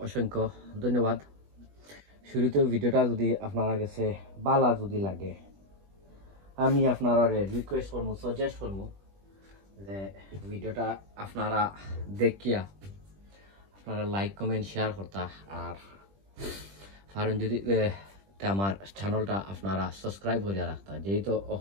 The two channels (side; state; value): left; late; 20 ms